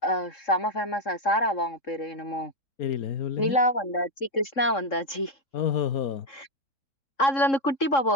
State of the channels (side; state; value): right; late; 3.7 ms